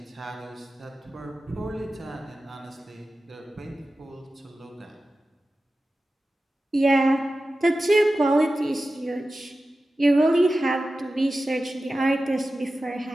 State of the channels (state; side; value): normal; both; correlation 0.94